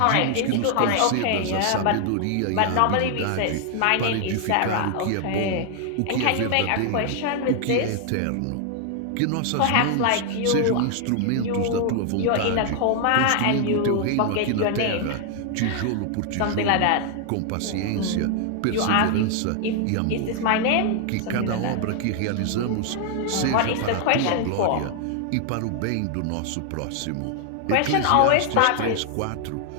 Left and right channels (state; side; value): different; both; correlation 0.00